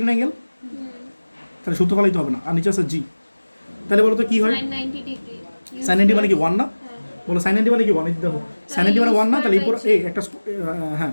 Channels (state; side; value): inverted; both; correlation -1.00